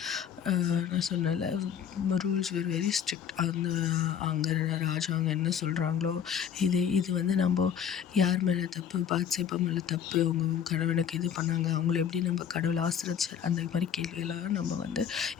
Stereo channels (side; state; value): right; quieter; 8.5 dB